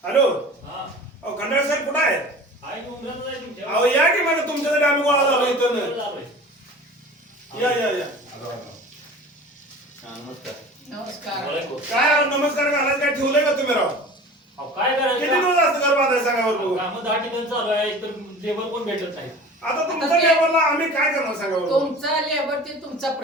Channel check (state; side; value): normal; both; correlation 0.40